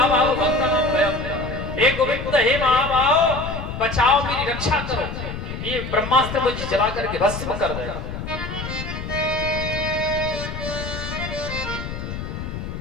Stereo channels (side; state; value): left; noise; rumble, 7 dB below the sound